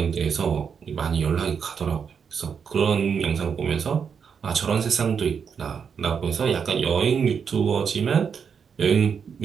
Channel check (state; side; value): quieter; left; 6.7 dB